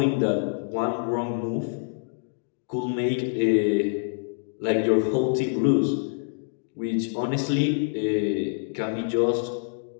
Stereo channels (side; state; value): right; silent; digital silence